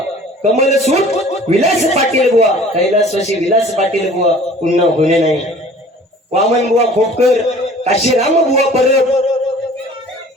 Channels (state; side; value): normal; both; correlation 0.48